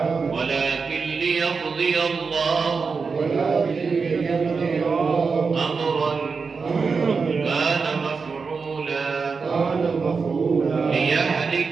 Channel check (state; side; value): quieter; left; 5.0 dB